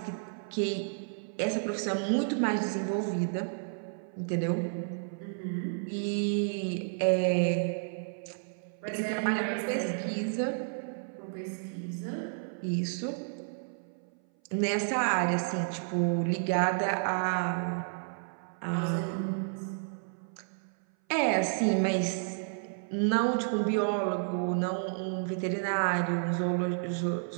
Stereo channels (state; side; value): silent; left; 57 dB below the other